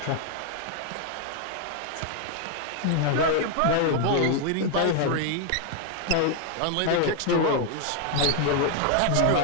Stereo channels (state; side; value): different; both; correlation 0.00